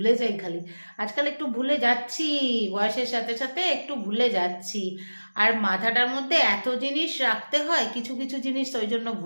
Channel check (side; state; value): both; inverted; correlation -1.00